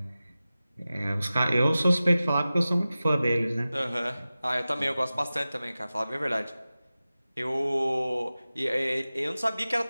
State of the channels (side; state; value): both; inverted; correlation -0.96